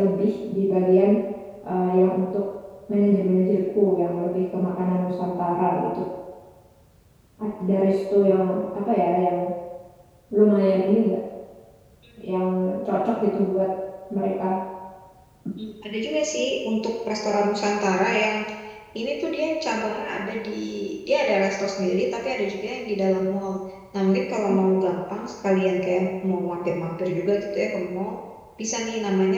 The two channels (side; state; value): both; identical; correlation 1.00